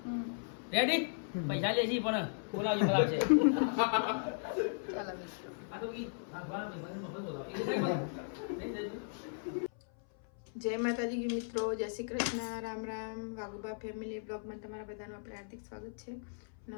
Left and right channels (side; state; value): right; silent; 53 dB below the other